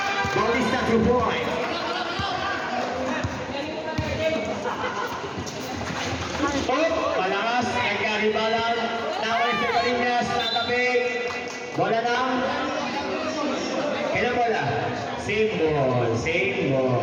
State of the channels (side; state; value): both; identical; correlation 1.00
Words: Bautista 2 points. Malakas. Nagkaribalan. Naway sa Barinas. Natabig. Bola lang. Kailan bola? Same